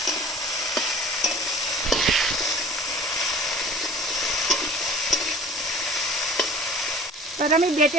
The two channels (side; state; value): both; normal; correlation 0.45